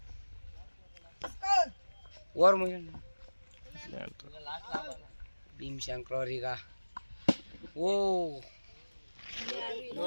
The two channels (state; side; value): inverted; both; correlation -1.00